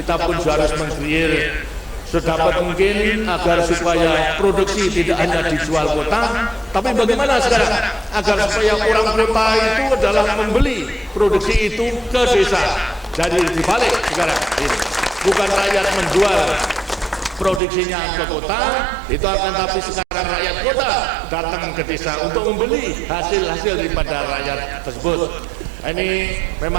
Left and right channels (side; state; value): left; drops out; at 17.6 s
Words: pun harus meng-create sedapat mungkin agar supaya produksi tidak hanya dijual kota, tapi bagaimana sekarang agar supaya orang kota itu adalah membeli produksi itu ke desa. Jadi dibalik sekarang ini, bukan rakyat menjual produksinya ke kota, itu akan tapi sekarang rakyat kota datang ke desa untuk membeli hasil-hasil daripada rakyat tersebut. Ini